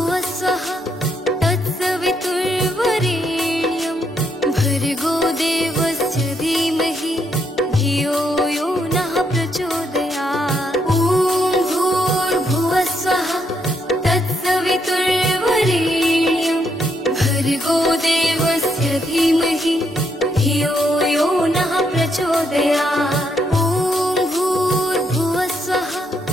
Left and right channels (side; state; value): both; normal; correlation 0.76